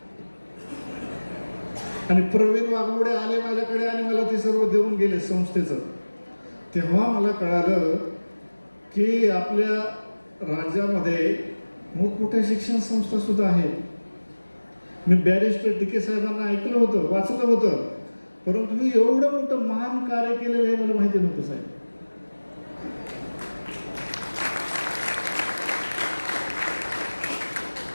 आणि प्रवीण वाघमोडे आले माझ्याकडे आणि मला ते सर्व देऊन गेले संस्थेचं. तेव्हा मला कळालं की आपल्या राज्यामध्ये मोठमोठ्या शिक्षण संस्था सुद्धा आहेत. मी बॅरिस्टर DK साहेबांना ऐकलं होतं, वाचलं होतं, परंतु मी एवढं मोठं महान कार्य केलेलं आहे मला माहिती नव्हतं साहेब.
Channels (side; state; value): both; inverted; correlation -1.00